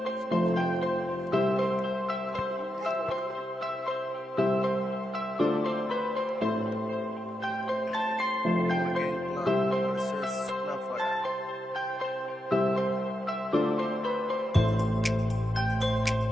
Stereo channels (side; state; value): both; normal; correlation 0.86